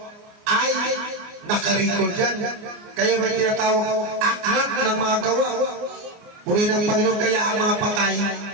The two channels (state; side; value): late; left; 29 ms